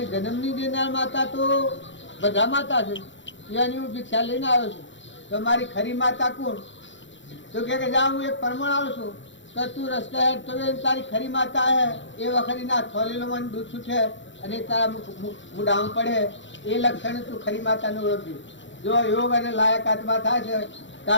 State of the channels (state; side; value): late; right; 0.54 ms